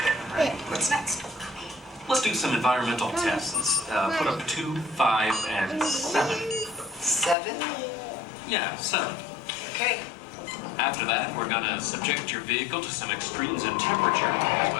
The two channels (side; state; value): right; drops out; at 7.4 s